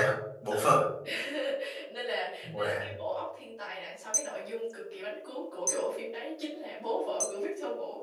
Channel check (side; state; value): both; identical; correlation 1.00